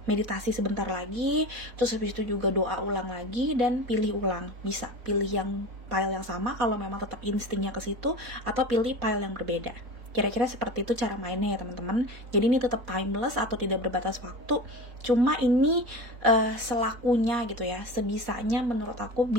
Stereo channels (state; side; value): late; left; 4.2 ms